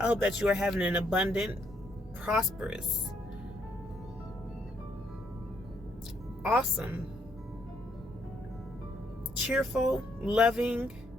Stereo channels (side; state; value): both; normal; correlation 0.72